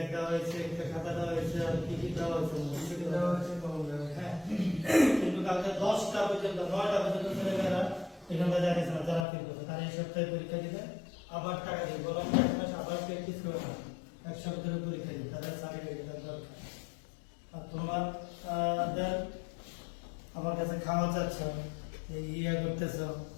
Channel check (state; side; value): drops out; right; at 9.2 s